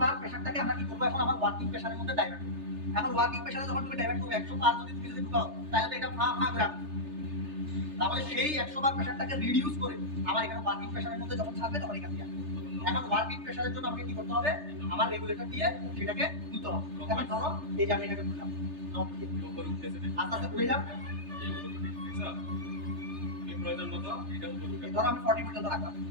বার প্রেসারটাকে আমরা কি করব? এখন আমার ওয়ার্কিং প্রেসারের মধ্যে ডাইভার্ট করব। এখন ওয়ার্কিং প্রেসারে যখন তুমি ডাইভার্ট করবে 100 বার যদি তুমি ঢুকাও, তাহলে তো এটা করে রাখবে। তাহলে সেই 100 বার প্রেসারটাকে রিডিউস করে আমার এখানে ওয়ার্কিং প্রেসারের মধ্যে যখন ছাড়বে তখন এখান দিয়ে এখন ওয়ার্কিং প্রেসারের জন্য আমাকে কি করতে হবে? আমার রেগুলেটর দিয়ে সেটাকে তুলতে হবে। এখন ধরো এই যে আমি এটাকে তুললাম, আস্তে আস্তে ঘুরে যাবে, ধরো আমি 40 পর্যন্ত রাখলাম,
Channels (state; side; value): late; left; 3.3 ms